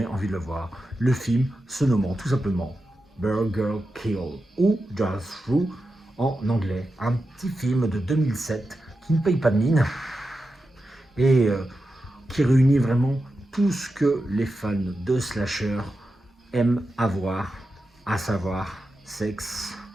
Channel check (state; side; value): normal; both; correlation 0.90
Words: envie de le voir. Le film se nommant tout simplement Burger Kill ou Just Through en anglais. Un petit film de 2007 qui ne paye pas de mine et qui réunit vraiment tout ce que les fans de slasher aiment avoir, à savoir sexe,